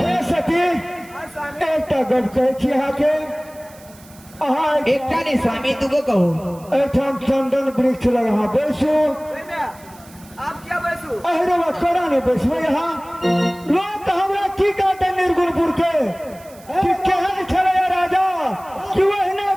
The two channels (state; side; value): noise; right; hiss, 24 dB below the sound